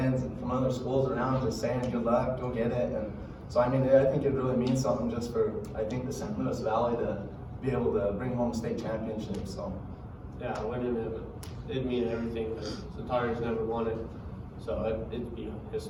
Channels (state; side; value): identical; both; correlation 1.00